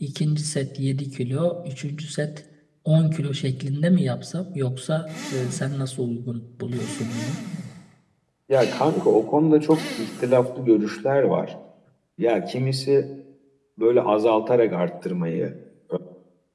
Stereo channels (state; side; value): identical; both; correlation 1.00